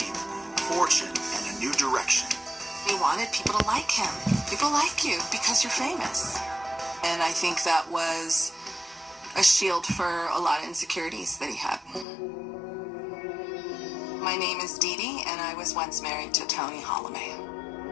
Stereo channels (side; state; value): right; drops out; at 12.1 s